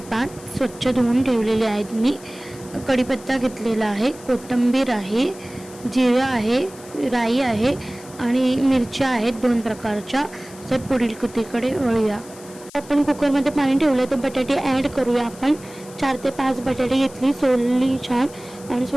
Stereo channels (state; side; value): noise; left; hiss, 20 dB below the sound